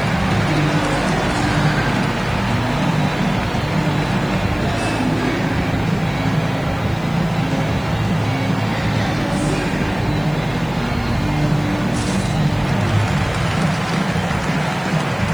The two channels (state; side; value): noise; left; hiss, 26 dB below the sound